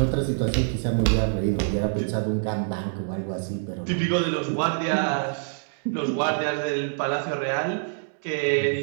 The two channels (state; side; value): silent; left; digital silence